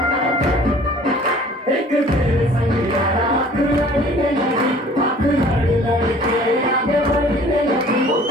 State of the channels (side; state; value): both; normal; correlation 0.51